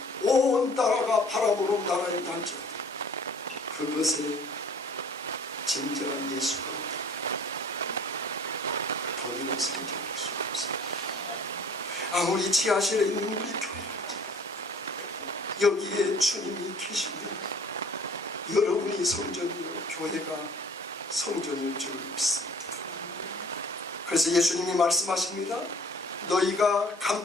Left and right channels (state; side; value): normal; both; correlation 0.51